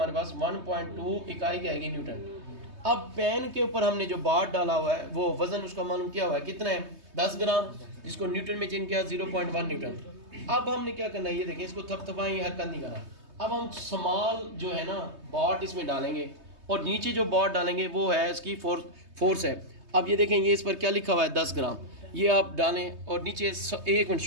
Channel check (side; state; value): left; late; 3.2 ms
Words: पास, 1.2 इकाई क्या आएगी, न्यूटन। अब पेन के ऊपर हमने जो बार डाला हुआ है, वो वजन उसका मालूम किया हुआ है, कितना है, 10 ग्राम, जिसको न्यूटन में चेंज किया 0.1 न्यूटन। अब हमने क्या करना है, ये देखें, इसको थपथपाएं, हरकत नहीं करना। अब हम स्मॉल जो है ना बॉट इसमें डालेंगे और नीचे जो बॉट डालेंगे वो है इसकी फोर्स है। अब ये देखें, ये इस पर क्या लिखा हुआ है 10 ग्राम, ये आप डालें और नीचे 1 मिनट